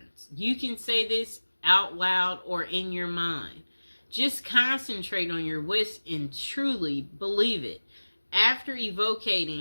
You can say this out loud or in your mind. Just concentrate on your wish and truly believe it. After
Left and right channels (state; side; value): inverted; both; correlation -1.00